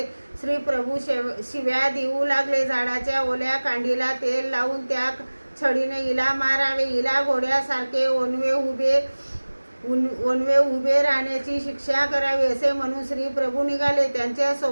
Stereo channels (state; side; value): inverted; both; correlation -1.00